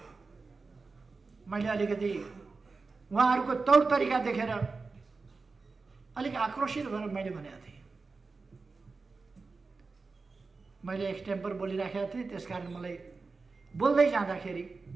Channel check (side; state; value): left; quieter; 4.1 dB